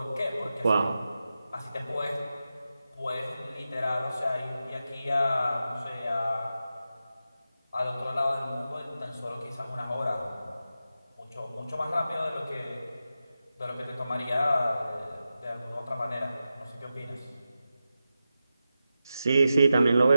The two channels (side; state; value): both; inverted; correlation -0.91